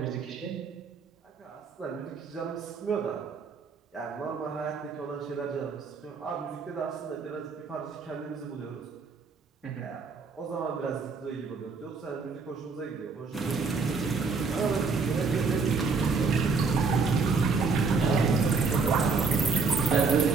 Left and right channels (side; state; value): left; quieter; 4.6 dB